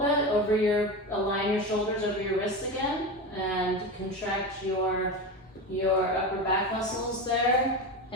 align your shoulders over your wrists again, and contract your upper back muscles there,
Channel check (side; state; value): both; normal; correlation 0.22